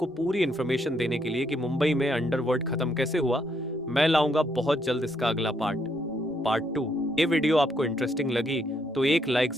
पूरी इन्फॉर्मेशन देने के लिए कि मुंबई में अंडरवर्ल्ड खत्म कैसे हुआ, मैं लाऊंगा बहुत जल्द इसका अगला पार्ट 2। ये वीडियो आपको इंटरेस्टिंग लगी तो एक लाइक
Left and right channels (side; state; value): both; normal; correlation 0.74